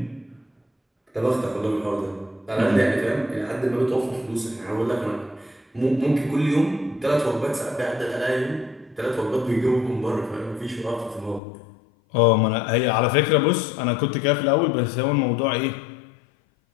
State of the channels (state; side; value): drops out; right; at 11.4 s